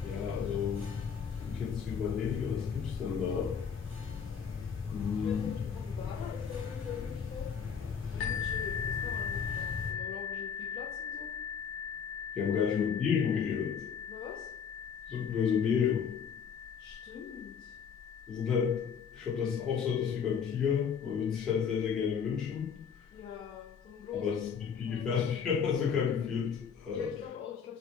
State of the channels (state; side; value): quieter; right; 6.9 dB